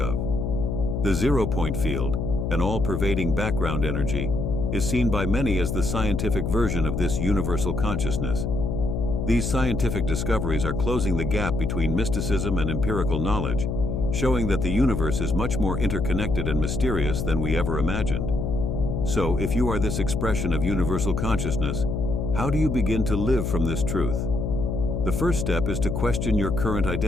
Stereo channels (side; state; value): left; noise; hum, 2 dB below the sound